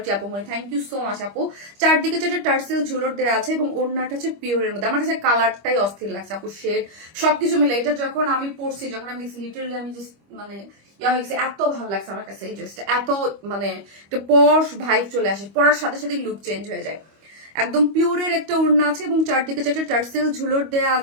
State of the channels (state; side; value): late; left; 25 ms